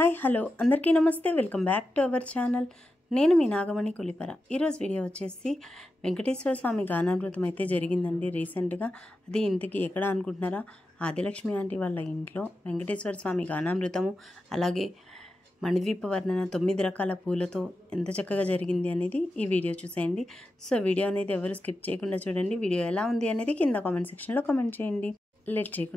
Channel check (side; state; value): both; normal; correlation 0.90